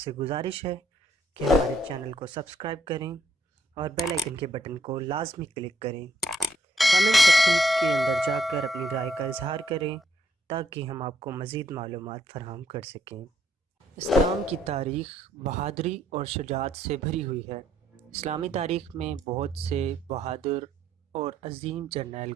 گزارش ہے کہ ہمارے چینل کو سبسکرائب کریں اور بیل آئیکن کے بٹن کو لازمی کلک کریں۔ کمنٹ سیکشن کے اندر جا کر اپنی رائے کا اظہار کریں تاکہ ہم آپ کو مزید معلومات فراہم کر سکیں۔ اسلام کی تاریخ بہادری اور شجاعت سے بھری ہوئی ہے۔ اسلامی تاریخ میں بہت سے بہادر اور عظیم جرنیل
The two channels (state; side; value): normal; both; correlation 0.70